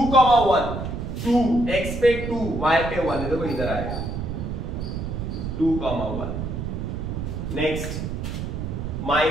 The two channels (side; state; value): right; noise; rumble, 4 dB below the sound